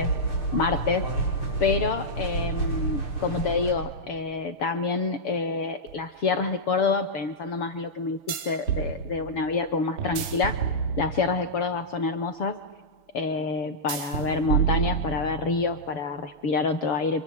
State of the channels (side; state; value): right; late; 6.6 ms